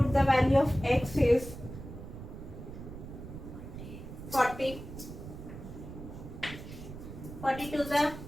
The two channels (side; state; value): right; noise; rumble, 11 dB below the sound